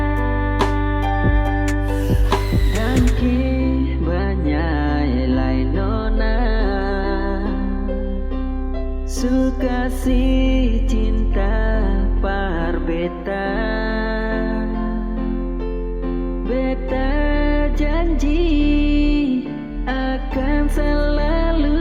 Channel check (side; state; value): both; identical; correlation 1.00